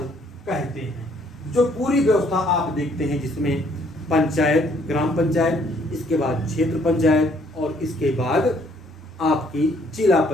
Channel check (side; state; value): both; normal; correlation 0.65